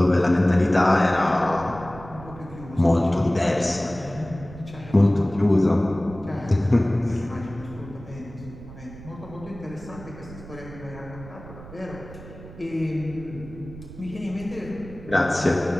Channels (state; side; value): noise; right; rumble, 16 dB below the sound